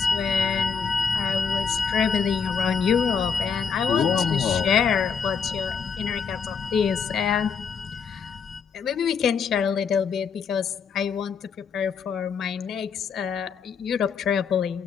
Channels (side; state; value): right; quieter; 6.1 dB